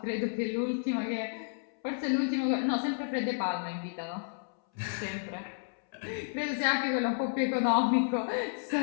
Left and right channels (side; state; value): right; silent; 57 dB below the other